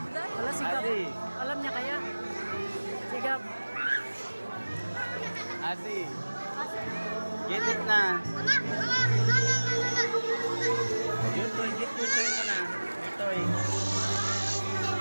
Wala, sigap. Azi. Alam niya kaya. Sigap. Azi, get it na. Yutoy, get yutoy mo na. Yutoy.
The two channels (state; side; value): inverted; both; correlation -1.00